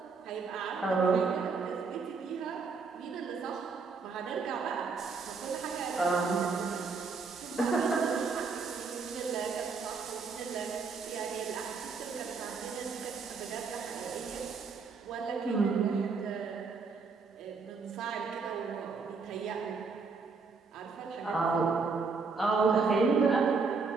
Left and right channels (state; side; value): quieter; left; 4.8 dB